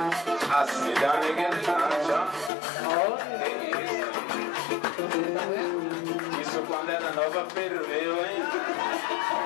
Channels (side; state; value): right; drops out; at 2.5 s